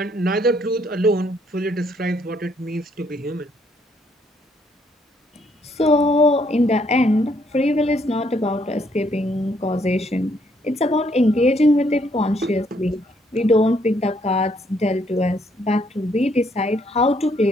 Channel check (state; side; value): normal; both; correlation 0.70